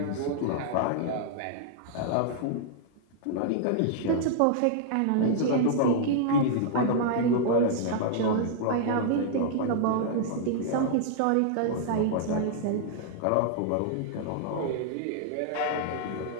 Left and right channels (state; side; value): different; both; correlation -0.01